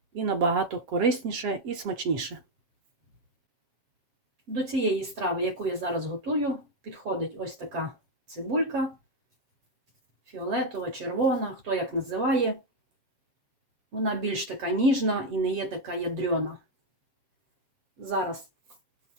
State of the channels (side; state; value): left; late; 7.4 ms